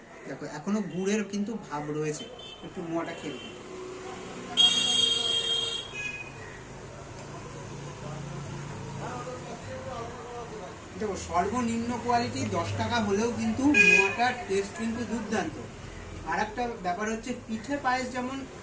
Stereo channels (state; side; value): identical; both; correlation 1.00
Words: দেখো এখনো গুড়ের কিন্তু ভাব রয়েছে, একটু মোয়াটা খেয়ে দেখো। দেখো সর্বনিম্ন কোয়ালিটি 10 টাকা হলেও কিন্তু মোয়াটার টেস্ট কিন্তু দুর্দান্ত। আর একটা ব্যাপার হচ্ছে, পিঠে পায়েস যেমন